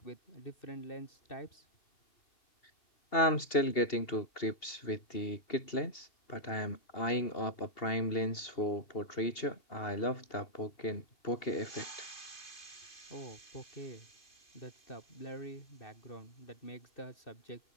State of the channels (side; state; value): right; late; 2.8 ms